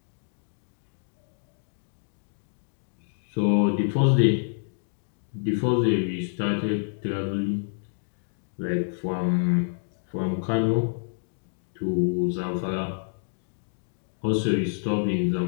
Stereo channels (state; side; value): silent; right; digital silence